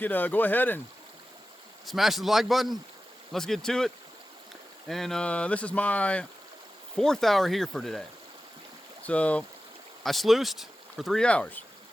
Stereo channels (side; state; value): both; normal; correlation 0.94